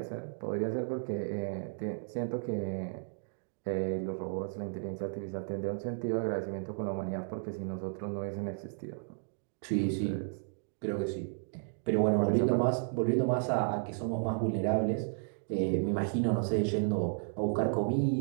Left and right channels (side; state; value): left; silent; digital silence